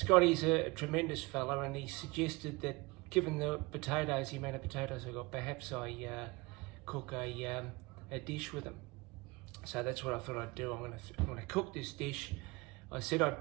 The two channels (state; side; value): quieter; left; 24.5 dB